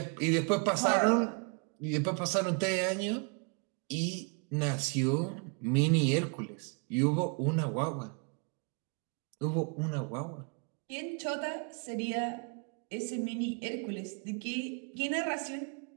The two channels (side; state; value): left; quieter; 36.8 dB